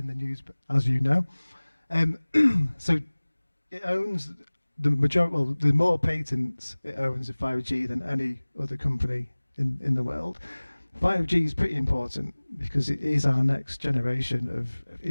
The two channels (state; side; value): inverted; both; correlation -1.00